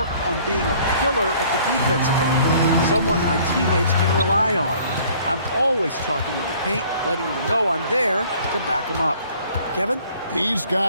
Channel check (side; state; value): both; inverted; correlation -0.56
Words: on being a pillar at the defensive end, someone my teammates can rely on. I'm always talking in the paint, letting them know I'm there to back them up. Kevin? He's